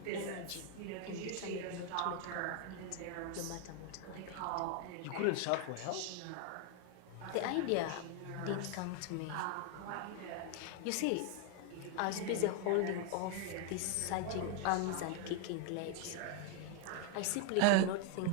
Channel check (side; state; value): both; different; correlation 0.01